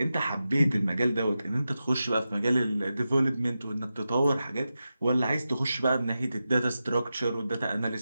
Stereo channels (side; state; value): both; inverted; correlation -0.91